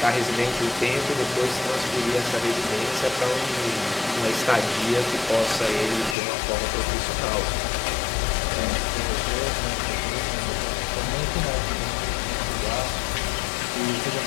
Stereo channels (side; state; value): right; drops out; at 6.2 s